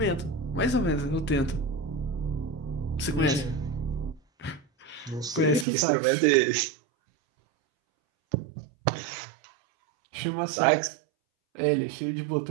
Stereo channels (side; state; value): left; drops out; at 5.7 s